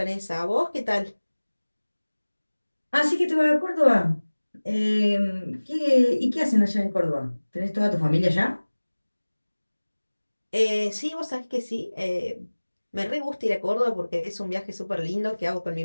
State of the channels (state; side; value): inverted; both; correlation -1.00